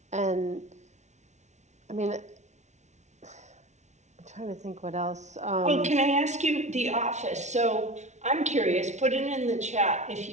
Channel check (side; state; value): left; late; 0.33 ms